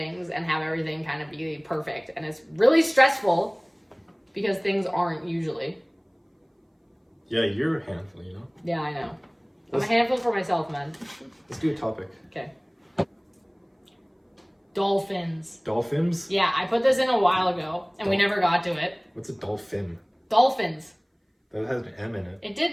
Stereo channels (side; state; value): both; identical; correlation 1.00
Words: and have everything kind of be perfect. And it's really stressful because things aren't usually. Yeah, you're a handful, you know? Yeah, I know. I'm a handful for myself, man. Let's do a topic. Okay. Dolphins. Dolphins? Yeah, I put this in a while ago, and we never got to it. What's a dolphin? Dolphins. That has an M in it. It